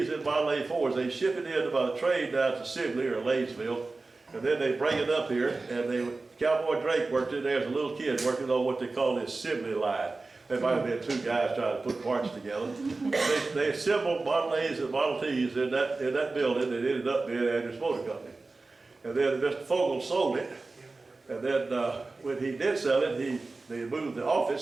and Model A Fords, they ship it in by the train down to Sibley or Laysville, and then they bring it up here, and Cowboy Drake worked in there as a little kid working on what they call this Sibley line. There might have been two guys trying to put parts together. They assembled Model A's and Model T's in that building that ended up being Andrews Motor Company. And then Mr. Fogel sold it, and then when he did sell it, they moved the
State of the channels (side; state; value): left; quieter; 3.5 dB